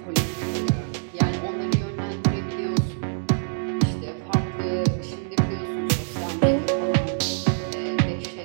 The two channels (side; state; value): left; silent; digital silence